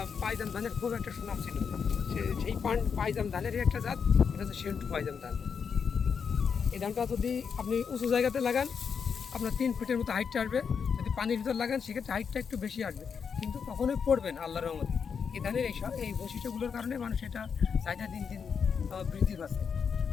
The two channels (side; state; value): right; quieter; 6.4 dB